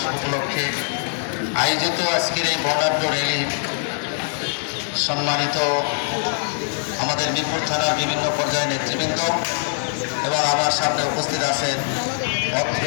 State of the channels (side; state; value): right; silent; digital silence